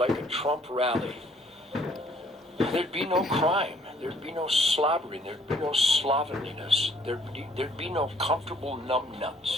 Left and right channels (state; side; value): normal; both; correlation 0.61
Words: a Trump rally, there'd be no crime, there'd be no slobbering, there'd be no slovenliness, there'd be no comfortable